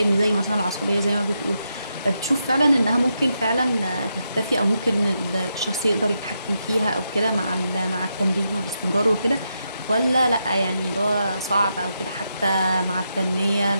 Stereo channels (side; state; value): both; inverted; correlation -0.84